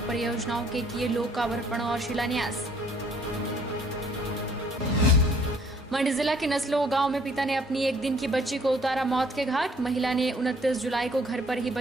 परियोजनाओं के किए लोकार्पण और शिलान्यास। मंडी जिला के नसलो गांव में पिता ने अपनी 1 दिन की बच्ची को उतारा मौत के घाट। महिला ने 29 जुलाई को घर पर ही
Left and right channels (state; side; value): normal; both; correlation 0.60